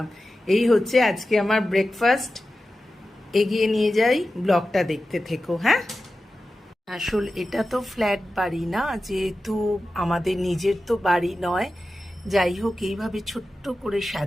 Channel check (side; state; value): both; normal; correlation 0.93